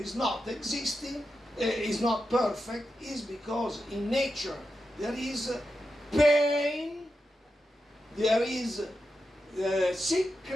not existing, is not perfect, is because in nature there is pain, there is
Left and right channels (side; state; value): both; normal; correlation 0.89